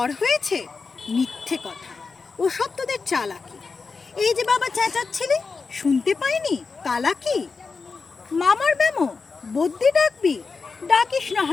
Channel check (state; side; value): quieter; right; 4.6 dB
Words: হয়েছে? মিথ্যে কথা, ওসব তোদের চালাকি। এই যে বাবা চেঁচাচ্ছিলি, শুনতে পাইনি? কালাকি। মামার ব্যামো, বদ্যি ডাকবি? ডাকিস না